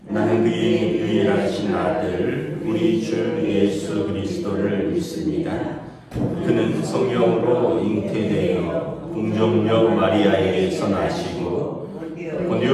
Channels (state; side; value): identical; both; correlation 1.00